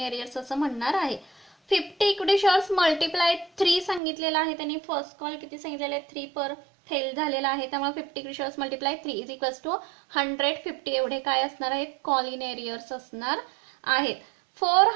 एरियर्स असं म्हणणार आहे. 50 इक्विटी शेअर्स मल्टिप्लाय 3 सांगितलेलं आहे त्यांनी. फर्स्ट कॉल किती सांगितलेलं आहे 3 पर फेल झालेला आहे, त्यामुळे 50 equity shares multiply 3 is equals to 150 एवढे काय असणार आहेत कॉलिन एरियर्स असणार आहेत.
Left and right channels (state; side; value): drops out; left; at 4.0 s